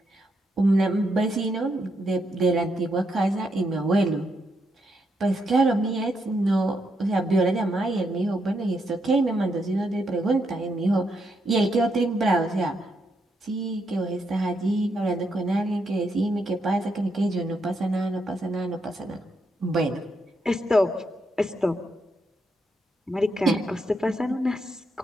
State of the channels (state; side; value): normal; both; correlation 0.80